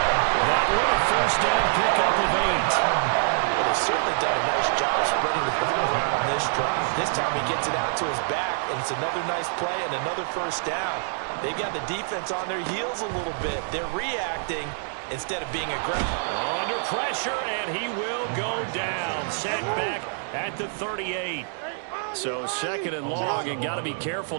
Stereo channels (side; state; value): left; silent; digital silence